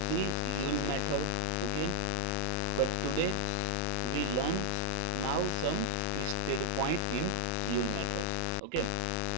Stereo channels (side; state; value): both; different; correlation -0.01